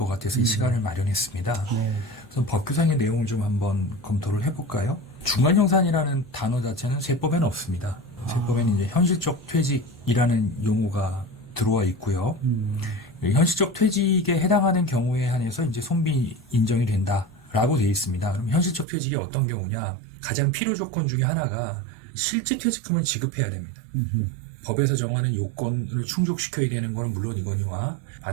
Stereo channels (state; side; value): drops out; left; at 18.9 s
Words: 같아서 이 시간을 마련했습니다. 그래서 법규상의 내용을 좀 한번 검토를 해볼까요? 중간정산이라는 단어 자체는 세법에는 없습니다. 세법에는 이제 현실적 퇴직이라는 용어가 들어와 있고요. 현실적 퇴직에 해당하는 경우에 한해서 이제 손비 인정이 된다라고 되어 있습니다. 그럼 현실적 퇴직이 어떤 경우냐? 가장 필요 조건 중에 하나가 실제 퇴직금을 지급해야 됩니다. 법에서 정하는 요건을 충족시켜야 되는 건 물론 이거니와